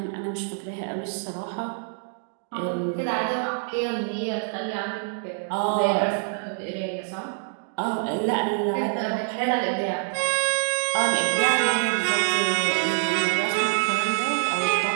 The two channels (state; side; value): silent; left; digital silence